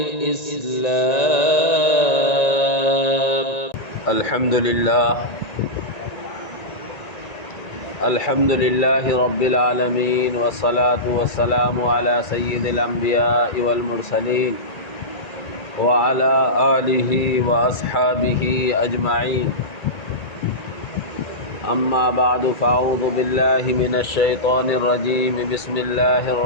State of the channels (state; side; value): late; right; 1.9 ms